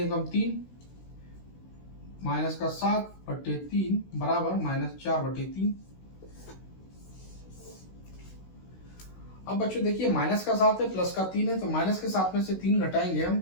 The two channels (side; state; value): right; late; 16 ms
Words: 3 माइनस का 7 बटे 3 बराबर माइनस 4 बटे 3। अब बच्चों देखिए माइनस का 7 है, प्लस का 3 है, तो माइनस के 7 में से 3 घटाएंगे हम